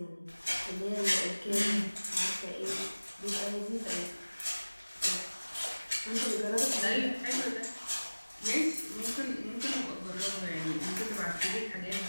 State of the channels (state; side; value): inverted; both; correlation -1.00